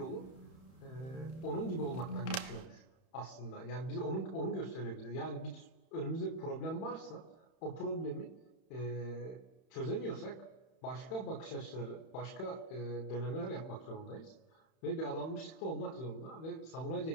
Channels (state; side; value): late; right; 31 ms